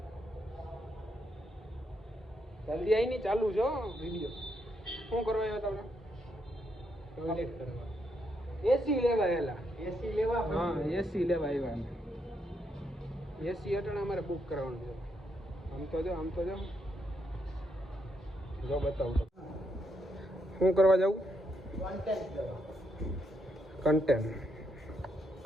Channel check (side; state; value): both; normal; correlation 0.78